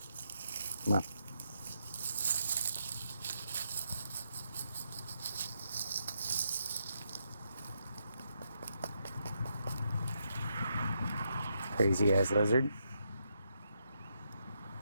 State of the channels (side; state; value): both; inverted; correlation -0.80